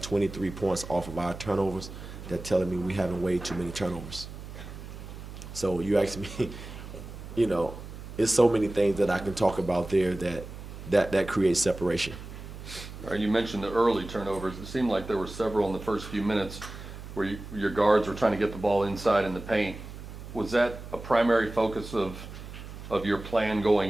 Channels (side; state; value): right; noise; hum, 12 dB below the sound